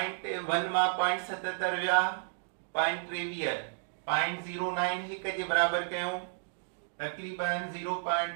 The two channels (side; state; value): left; silent; digital silence